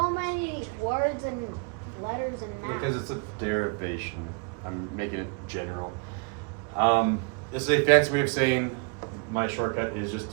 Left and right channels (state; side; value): quieter; left; 33.9 dB